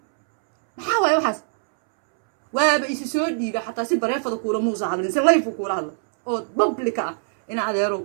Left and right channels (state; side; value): silent; left; 63 dB below the other